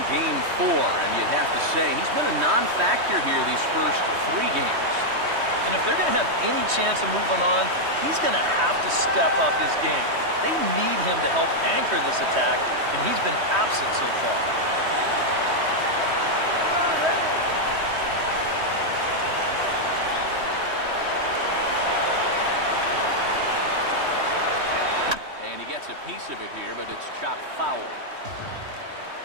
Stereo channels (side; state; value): left; late; 3.2 ms